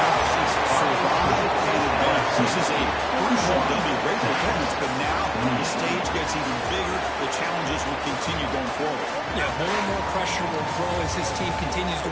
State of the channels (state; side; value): identical; both; correlation 1.00